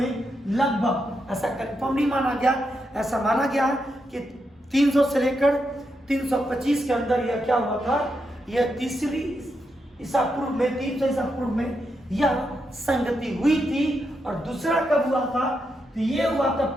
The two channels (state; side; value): normal; both; correlation 0.83